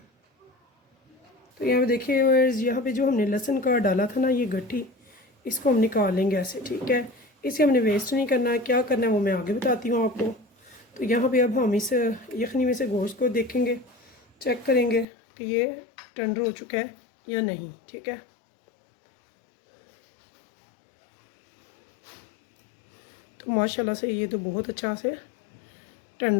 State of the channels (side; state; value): right; drops out; at 15.1 s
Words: तो यहाँ पे देखिए, यहाँ पे जो हमने लहसुन का डाला था ना, ये गट्ठी, इसको हम निकाल लेंगे ऐसे, ठीक है। इसे हमने वेस्ट नहीं करना है। क्या करना है वो मैं आगे बताती हूँ आपको। तो यहाँ पे अब हम इस यखनी में से गोश्त को देखेंगे, चेक करेंगे कि ये टेंडर हो चुका है या नहीं, ठीक है। तो माशाल्लाह से ये तो बहुत अच्छा से